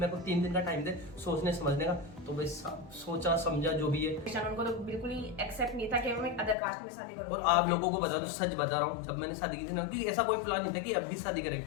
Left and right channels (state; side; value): drops out; right; at 6.6 s